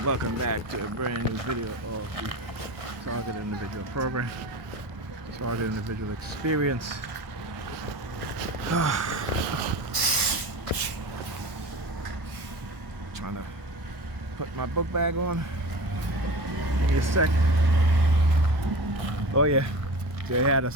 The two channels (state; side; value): late; left; 1.1 ms